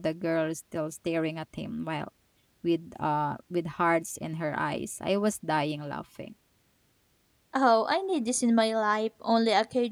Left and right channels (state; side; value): identical; both; correlation 1.00